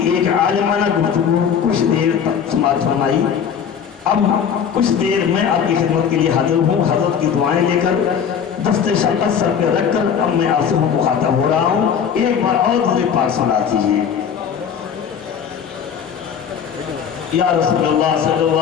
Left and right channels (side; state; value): right; quieter; 7.6 dB